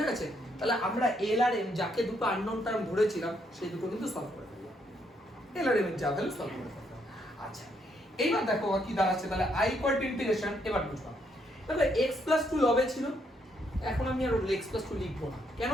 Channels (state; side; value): normal; both; correlation 0.74